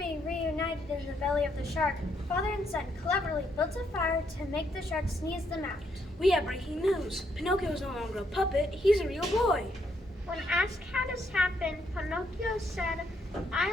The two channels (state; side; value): normal; both; correlation 0.74